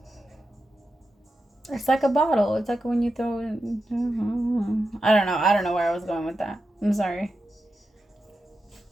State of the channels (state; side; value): normal; both; correlation 0.89